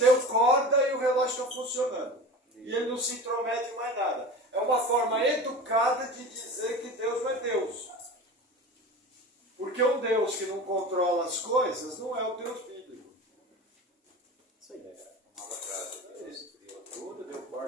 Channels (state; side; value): normal; both; correlation 0.33